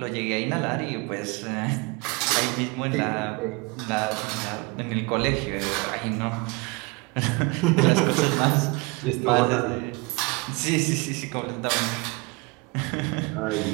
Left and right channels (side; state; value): left; quieter; 27.2 dB